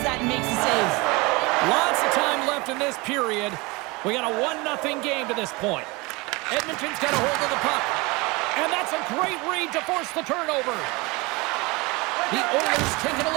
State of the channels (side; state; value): left; quieter; 25.1 dB